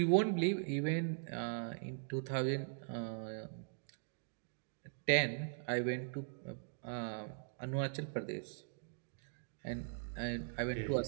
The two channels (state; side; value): silent; left; digital silence